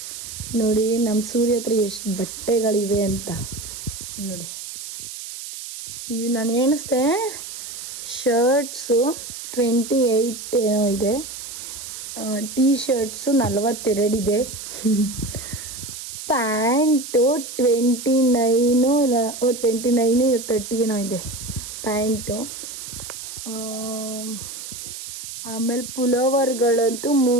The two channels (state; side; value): noise; right; hiss, 10 dB below the sound